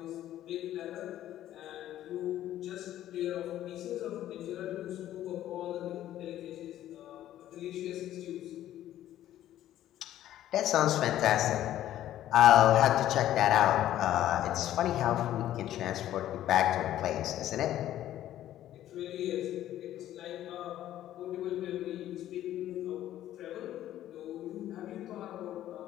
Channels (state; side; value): quieter; right; 12.7 dB